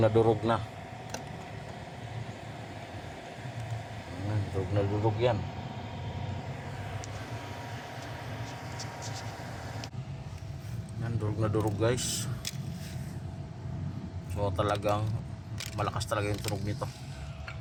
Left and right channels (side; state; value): both; identical; correlation 1.00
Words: durog na. Ayan, durog na durog yan. Yan, durog na durog guys. So talagang malakas talaga yung tunog nito.